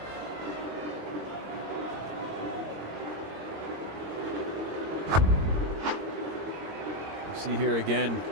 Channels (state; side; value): late; left; 22 ms